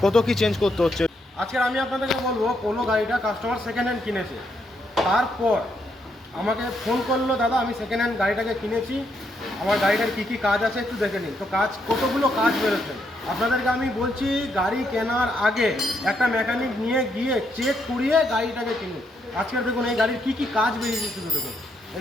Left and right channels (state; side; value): normal; both; correlation 0.77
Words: কত কি চেঞ্জ করতে হচ্ছে। আজকে আমি আপনাদেরকে বলবো, পোলো গাড়িটা কাস্টমার সেকেন্ড হ্যান্ড কিনেছে, তারপর আমাকে ফোন করলো, দাদা আমি সেকেন্ড হ্যান্ড গাড়িটাকে কিনেছি, আমার গাড়িটার কী কী কাজ আছে একটু দেখে নিন। তো কতগুলো কাজ বেরোচ্ছে আপনাদেরকে আমি বলছি, গাড়ি কেনার আগে একটা মেকানিক নিয়ে গিয়ে চেক করিয়ে গাড়িটাকে কিনুন। আজকের দেখুন এই গাড়ির কী কী কাজ বেরিয়েছে শুধু দেখুন।